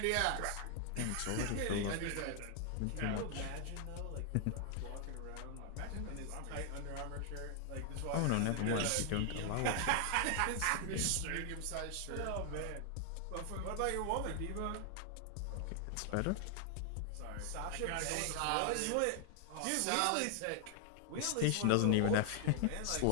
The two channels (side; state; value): both; different; correlation 0.00